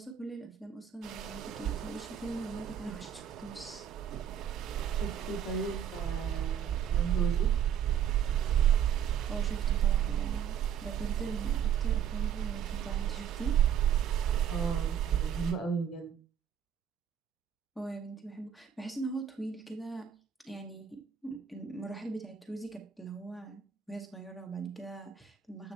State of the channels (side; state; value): left; quieter; 8.7 dB